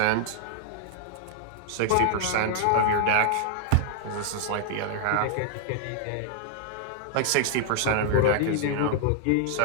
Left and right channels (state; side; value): different; both; correlation -0.01